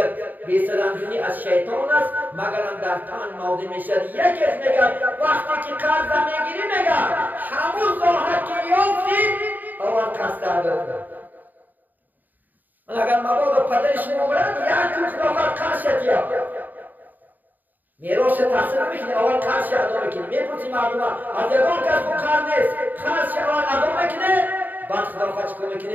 بی‌سرانجامی از شیطان است مگر هم در پنج موضع میشد. یکیش میگه وقتی که قرض میگیری میگه همون راحت که یافتی اول قصد ادا کن. من اگر مبادا پدر شما برد یک تو خلافت قرض یا میراث تحصیل میکنی اول قرض ادا میکنی میپرسی مردم از یگان کس کو قرض نیست قرض اول ادا میکنه بعد خلافت چیکار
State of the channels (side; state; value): left; late; 0.086 ms